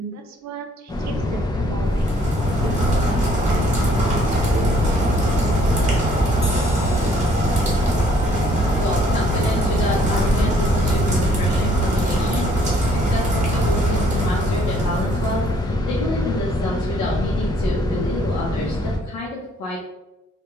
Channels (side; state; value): both; normal; correlation 0.64